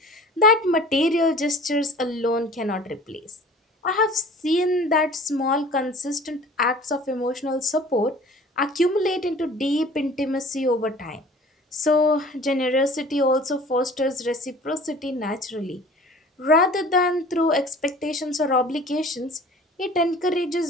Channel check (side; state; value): both; normal; correlation 0.46